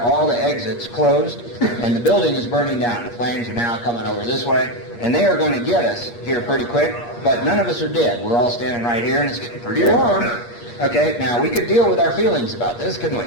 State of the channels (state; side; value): late; right; 8.5 ms